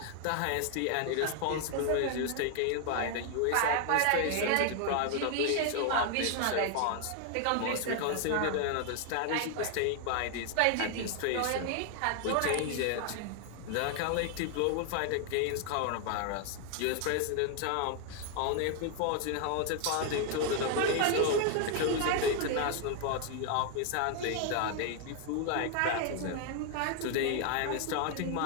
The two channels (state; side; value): different; both; correlation 0.00